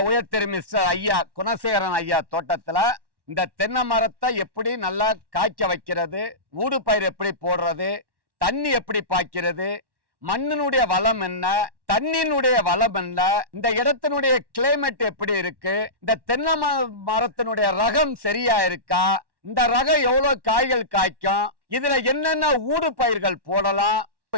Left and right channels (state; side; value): late; left; 1.1 ms